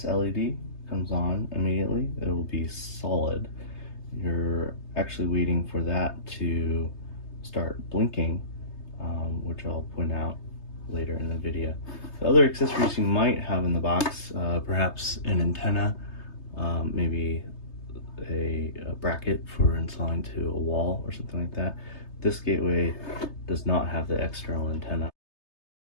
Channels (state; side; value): late; right; 3.3 ms